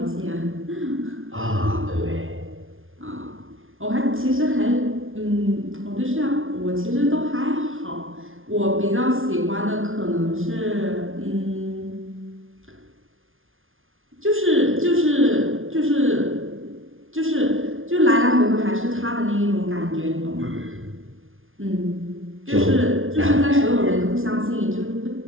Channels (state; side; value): late; left; 0.59 ms